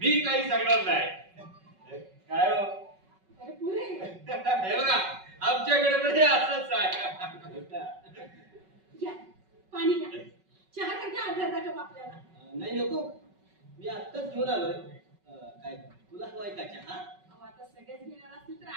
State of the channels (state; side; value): late; left; 5.3 ms